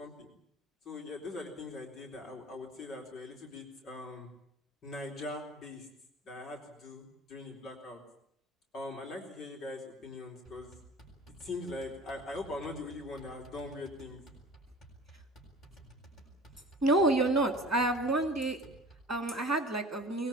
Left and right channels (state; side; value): normal; both; correlation 0.41